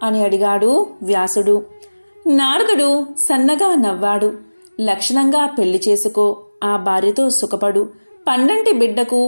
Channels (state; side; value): inverted; both; correlation -1.00